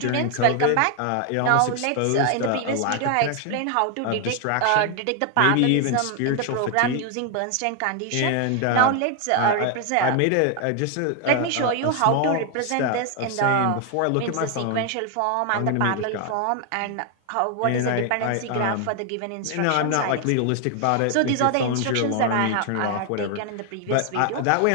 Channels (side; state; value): both; different; correlation 0.00